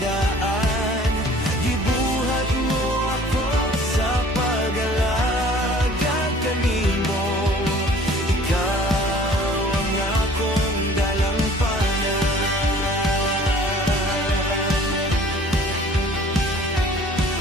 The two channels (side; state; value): both; normal; correlation 0.51